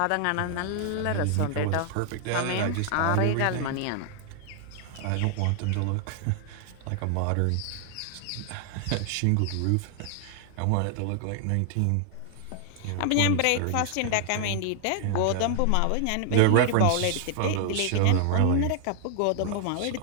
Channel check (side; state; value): both; different; correlation 0.00